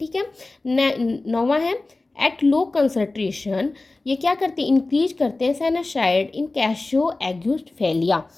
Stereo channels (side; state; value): right; quieter; 3.2 dB